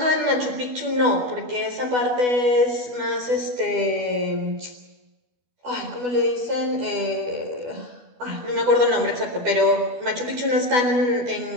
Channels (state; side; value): late; left; 12 ms